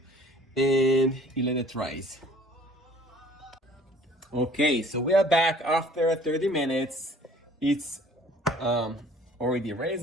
and you let it rise. Okay, so we are back after 30 minutes. It's already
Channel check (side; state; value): both; normal; correlation 0.53